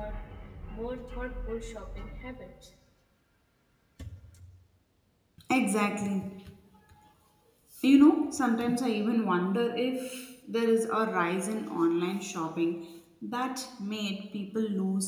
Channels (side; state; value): both; identical; correlation 1.00